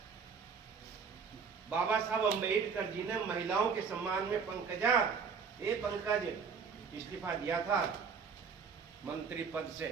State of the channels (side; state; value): left; quieter; 5.9 dB